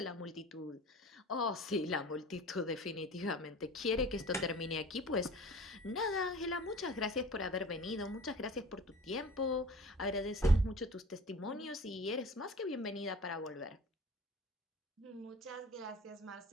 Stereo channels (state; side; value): normal; both; correlation 0.42